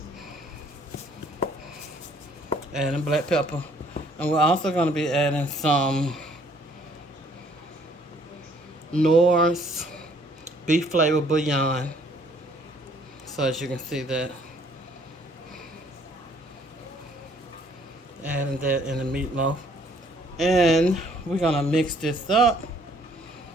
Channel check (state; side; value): normal; both; correlation 0.61